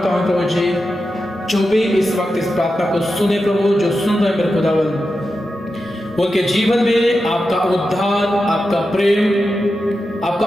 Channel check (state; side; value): normal; both; correlation 0.90